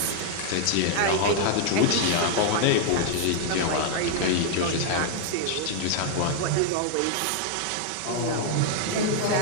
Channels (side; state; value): both; different; correlation 0.00